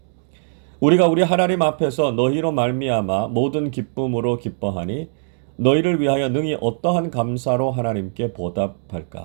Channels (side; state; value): left; silent; digital silence